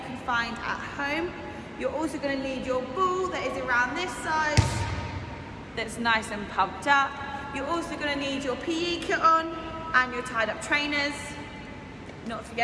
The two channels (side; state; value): both; identical; correlation 1.00